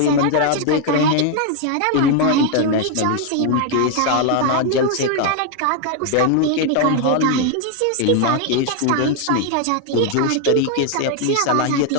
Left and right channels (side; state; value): both; different; correlation 0.01